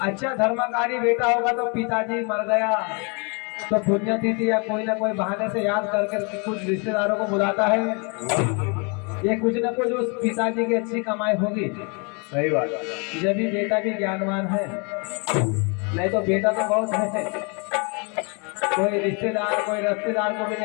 अच्छा धर्मकारी बेटा होगा तो पिताजी मर गया तो पुण्यतिथि या कोई ना कोई बहाने से याद करके कुछ रिश्तेदारों को बुलाता है। ये कुछ ना कुछ उस पिताजी की अच्छी कमाई होगी। सही बात। जब भी बेटा भी ज्ञानवान है, नहीं तो बेटा तो बहुत है, कोई रिश्तेदार कोई रिश्तेदार को भी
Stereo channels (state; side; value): quieter; right; 33.6 dB